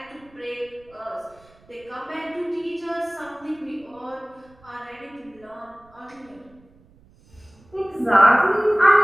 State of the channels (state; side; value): noise; right; rumble, 29 dB below the sound